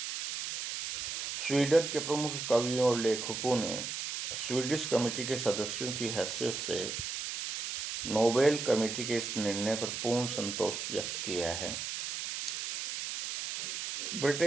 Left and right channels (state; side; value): noise; right; hiss, 4 dB below the sound